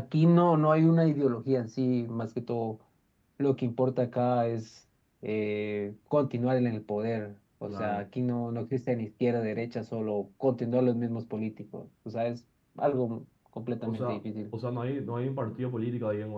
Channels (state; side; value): identical; both; correlation 1.00